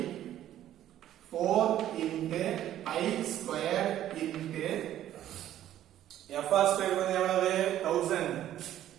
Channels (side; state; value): left; quieter; 12.1 dB